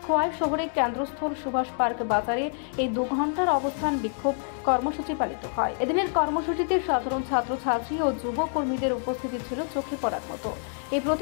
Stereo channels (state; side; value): silent; right; 56 dB below the other